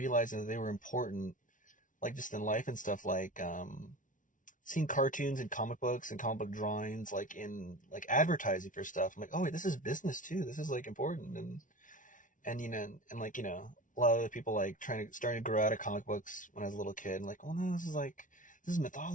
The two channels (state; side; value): late; right; 0.38 ms